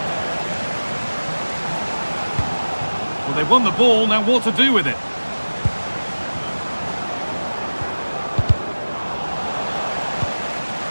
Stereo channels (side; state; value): both; inverted; correlation -1.00